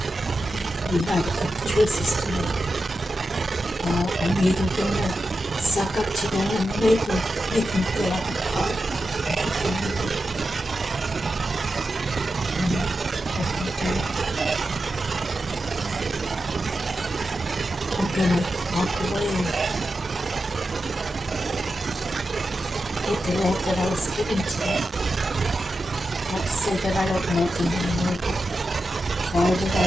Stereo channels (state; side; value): normal; both; correlation 0.90